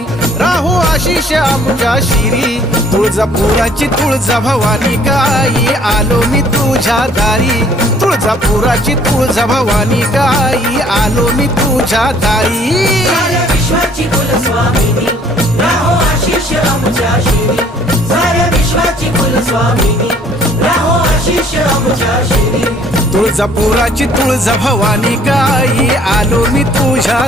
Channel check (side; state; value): both; normal; correlation 0.59